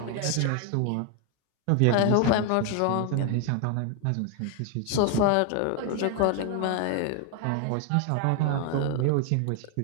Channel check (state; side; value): different; both; correlation 0.01